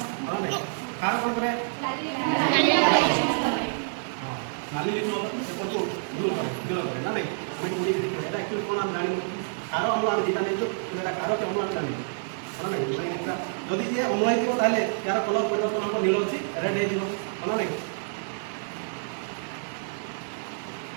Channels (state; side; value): silent; left; 60 dB below the other